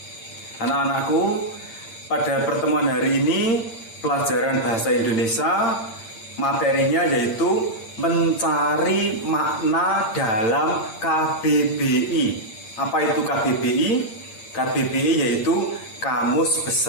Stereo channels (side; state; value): right; late; 8.8 ms